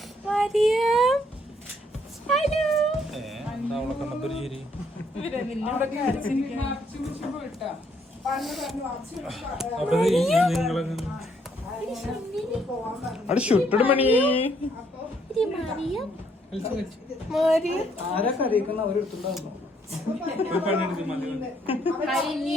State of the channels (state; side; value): normal; both; correlation 0.69